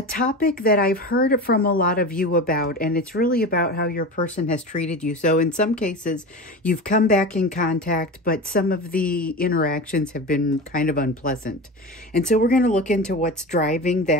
topic that I've heard from a lot of you about, and it's really about how your person has treated you. So in some cases, you've come back in contact, but some of the interactions have been kind of unpleasant. And so we're going to look into what's driving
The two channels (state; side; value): normal; both; correlation 0.28